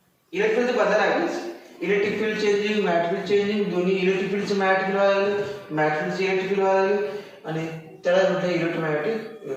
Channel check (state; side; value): identical; both; correlation 1.00